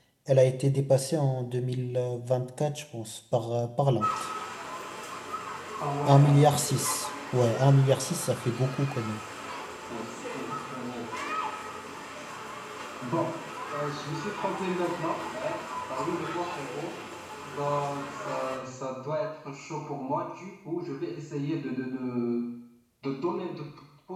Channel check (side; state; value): both; identical; correlation 1.00